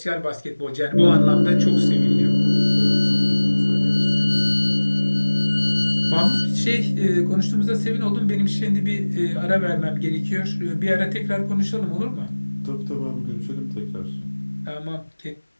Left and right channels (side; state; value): both; inverted; correlation -1.00